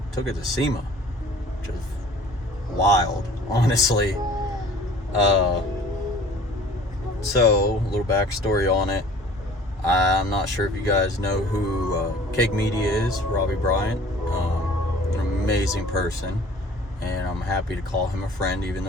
took it to SEMA, which is wild, honestly. So, a little backstory on it. I'm not sure if you guys know who Cake Media is, Robbie Bryant. An amazing person, and I'm happy to call him a friend, even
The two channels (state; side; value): normal; both; correlation 0.49